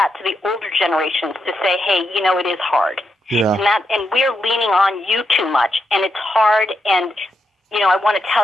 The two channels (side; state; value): both; normal; correlation 0.83